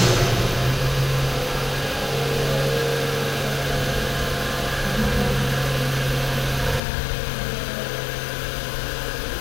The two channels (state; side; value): drops out; right; at 6.8 s